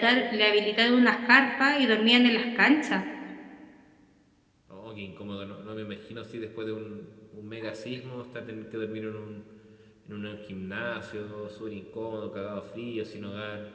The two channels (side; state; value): both; identical; correlation 1.00